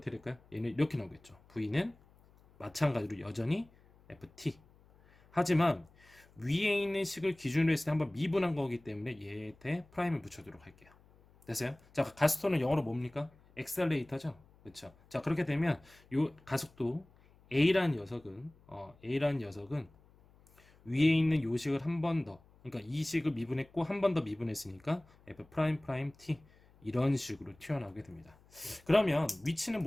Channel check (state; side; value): noise; left; hum, 28 dB below the sound